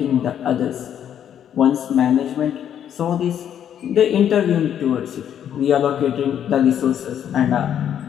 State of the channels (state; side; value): quieter; right; 9.5 dB